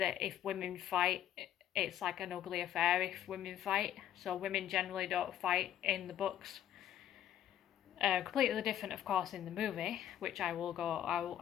if women fight, it's like an ugly affair if women fight. So women generally don't fight in the books. Completely different, of course, in the movie, which I will go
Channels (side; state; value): right; quieter; 11.1 dB